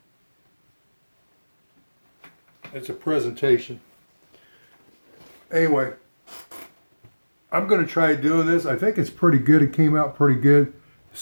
It's a presentation. Anyway, I'm going to try doing this. I think it's pretty good. It came out pretty good.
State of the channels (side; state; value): both; inverted; correlation -1.00